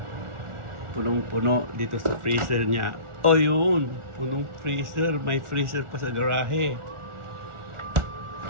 punong-puno dito sa freezer niya. Oh, yun. Punong freezer. May freezer pa sa garahe.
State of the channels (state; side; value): late; left; 1.4 ms